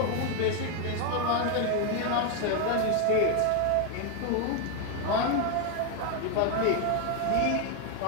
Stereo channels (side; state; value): both; different; correlation 0.01